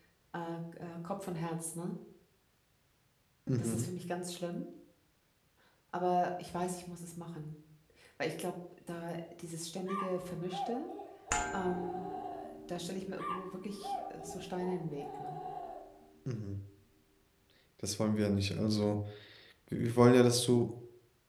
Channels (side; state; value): both; identical; correlation 1.00